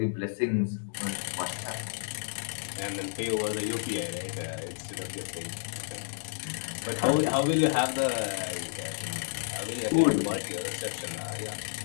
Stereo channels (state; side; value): silent; right; digital silence